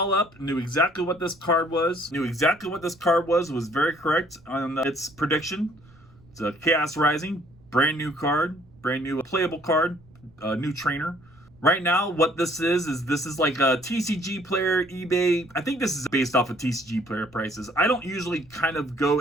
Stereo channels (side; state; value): right; noise; rumble, 27 dB below the sound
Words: up. Knew exactly what this card was. Was very correct on its prediction. It's a Chaos Rising. Brand new card. Brand new playable card. New trainer. Right now, what this is like a TCG player, eBay. I think this is based off of TCG player prices. I don't usually kind of go